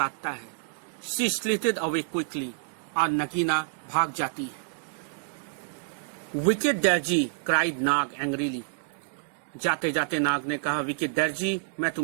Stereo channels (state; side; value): silent; left; digital silence